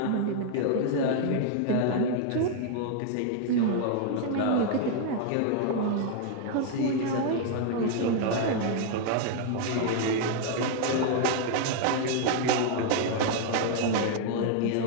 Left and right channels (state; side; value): different; both; correlation 0.00